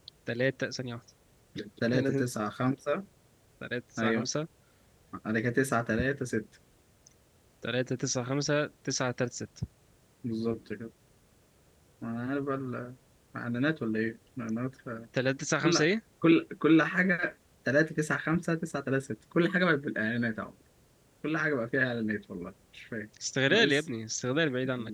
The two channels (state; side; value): identical; both; correlation 1.00